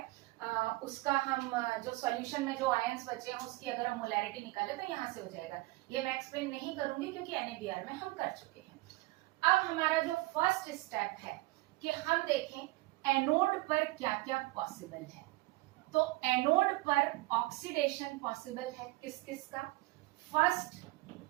उसका हम जो सॉल्यूशन में जो आयंस बचे हैं उसकी अगर हम मोलैरिटी निकाले तो यहाँ से हो जाएगा। ये मैं एक्सप्लेन नहीं करूंगी क्योंकि NaBr में हम कर चुके हैं। अब हमारा जो फर्स्ट स्टेप है कि हम देखें एनोड पर क्या क्या पॉसिबल है। तो एनोड पर ऑक्सीडेशन पॉसिबल है किस किस का, फर्स्ट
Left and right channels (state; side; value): quieter; left; 20.9 dB